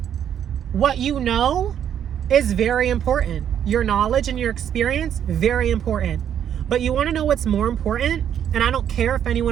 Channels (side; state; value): left; quieter; 9.4 dB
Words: What you know is very important. Your knowledge and your experience, very important. But you want to know what's more important? And I don't care if